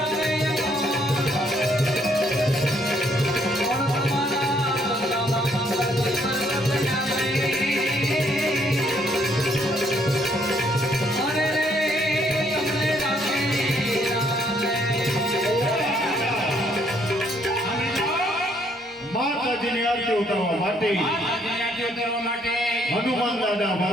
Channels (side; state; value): both; normal; correlation 0.68